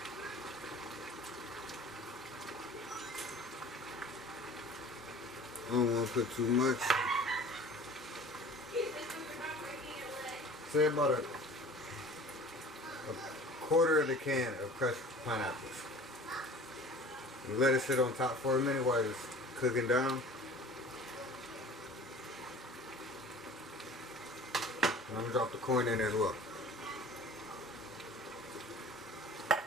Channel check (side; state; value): both; normal; correlation 0.44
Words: I don't want to put too much. Say about a quarter of the can of crushed pineapples. And let it sit on top for a minute while it's cooking down. And I'm gonna drop the corn in as well.